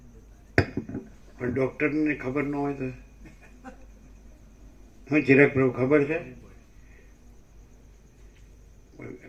પણ ડોક્ટરને ખબર ન હોય તો હું ચિરાગ પ્રભુ ખબર છે?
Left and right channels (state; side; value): identical; both; correlation 1.00